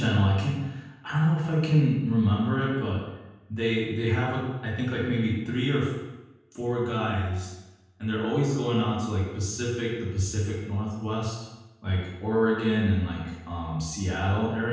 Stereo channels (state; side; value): identical; both; correlation 1.00